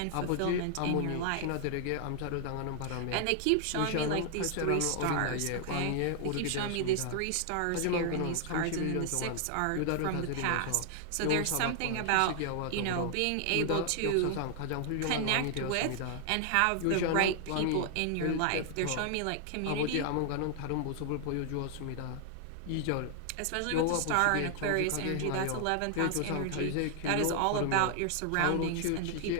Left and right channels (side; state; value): both; different; correlation 0.00